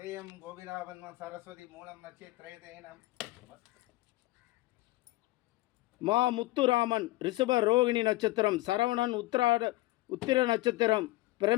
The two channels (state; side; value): quieter; right; 19.2 dB